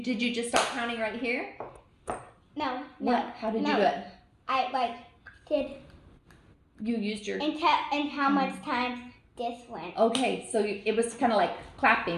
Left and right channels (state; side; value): identical; both; correlation 1.00